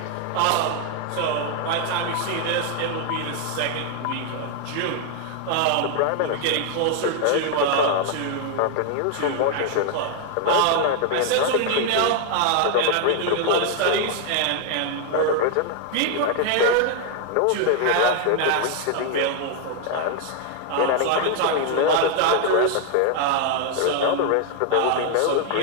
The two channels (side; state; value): both; different; correlation 0.00